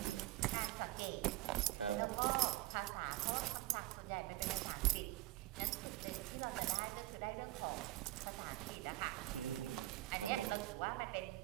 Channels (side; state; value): left; quieter; 17.4 dB